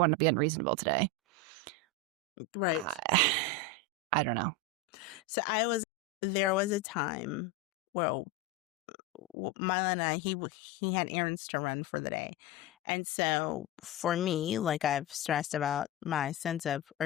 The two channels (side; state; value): both; normal; correlation 0.15